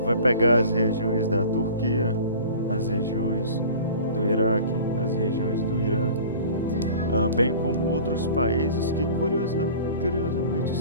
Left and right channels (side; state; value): both; inverted; correlation -0.42